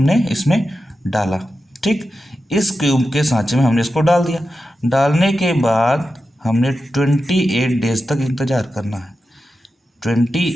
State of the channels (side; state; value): both; normal; correlation 0.91